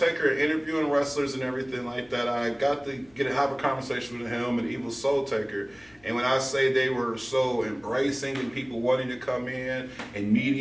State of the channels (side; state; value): left; noise; hum, 30 dB below the sound